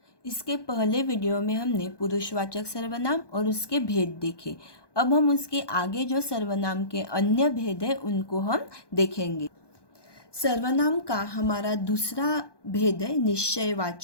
इसके पहले वीडियो में हमने पुरुषवाचक सर्वनाम और उसके भेद देखे। अब हम उसके आगे जो सर्वनाम के अन्य भेद है उनको हम देखेंगे। सर्वनाम का हमारा दूसरा भेद है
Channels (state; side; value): late; right; 1.2 ms